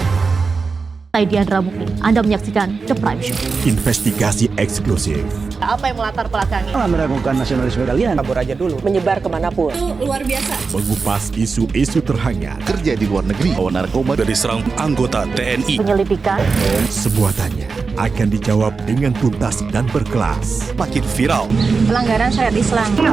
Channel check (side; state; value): left; quieter; 4.6 dB